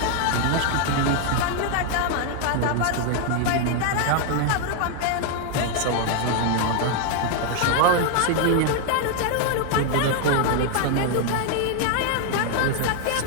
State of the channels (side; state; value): both; different; correlation 0.00